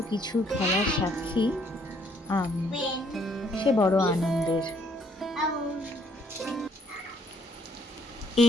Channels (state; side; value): normal; both; correlation 0.66